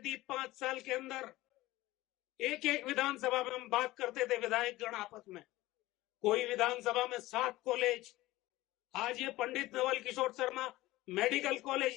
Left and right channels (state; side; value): quieter; right; 17.9 dB